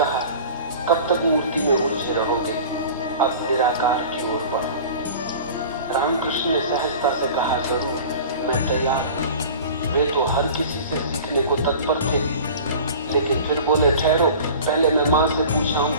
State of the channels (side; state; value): both; inverted; correlation -0.40